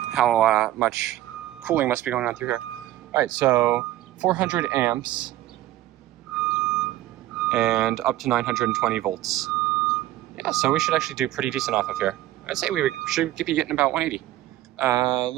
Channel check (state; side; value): quieter; left; 14.7 dB